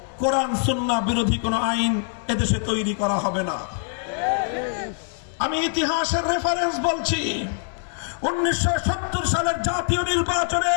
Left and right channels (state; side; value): silent; right; digital silence